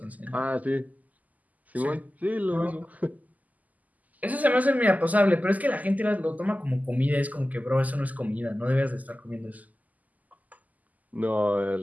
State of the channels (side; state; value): left; late; 0.078 ms